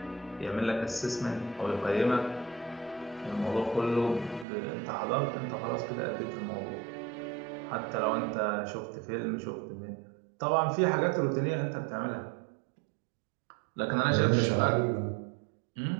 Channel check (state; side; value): drops out; left; at 4.5 s